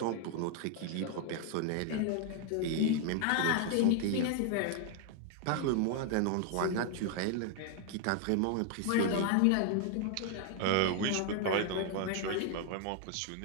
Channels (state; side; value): different; both; correlation 0.00